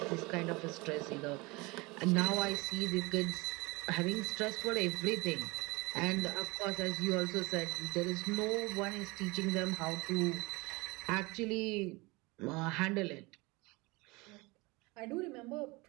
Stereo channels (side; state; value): left; quieter; 24.4 dB